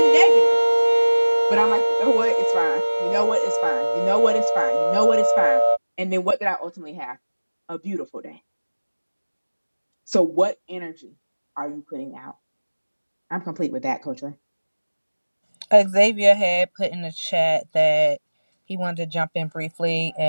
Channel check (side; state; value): both; inverted; correlation -1.00